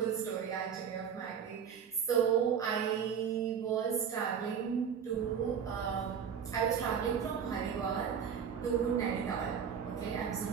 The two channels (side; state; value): left; quieter; 7.5 dB